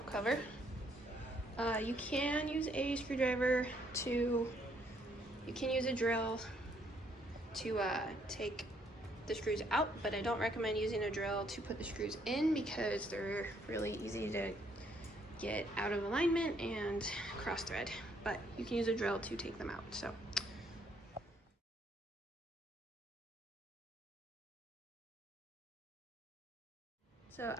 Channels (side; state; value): both; normal; correlation 0.69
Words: cover. You can use a screwdriver you can use a drill to take the screws out, but I don't recommend using a drill to put the screws in because they're really easy to get out of alignment and cross thread, but you can use a drill to take them out. So